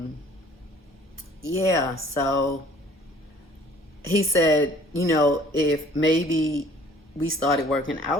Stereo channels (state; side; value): normal; both; correlation 0.54